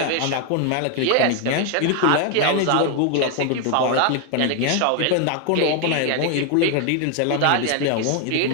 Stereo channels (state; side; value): different; both; correlation 0.00